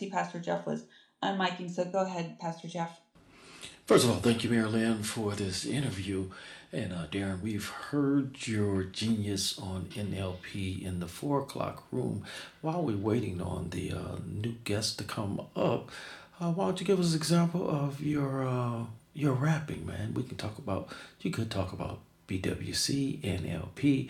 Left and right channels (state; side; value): identical; both; correlation 1.00